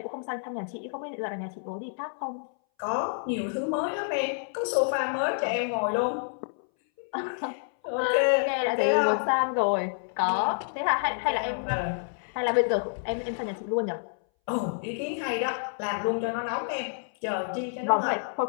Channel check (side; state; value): right; silent; 59 dB below the other